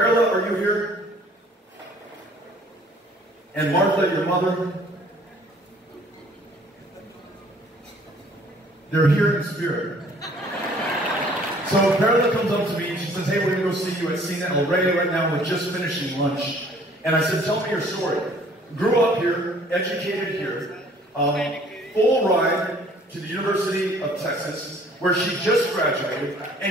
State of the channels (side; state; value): both; normal; correlation 0.56